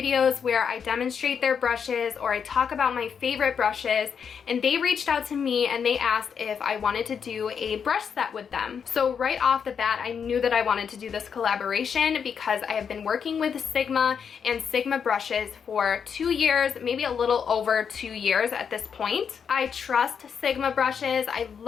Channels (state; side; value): quieter; right; 6.9 dB